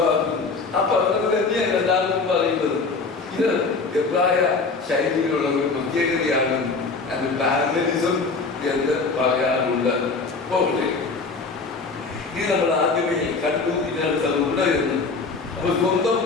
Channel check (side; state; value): right; quieter; 4.2 dB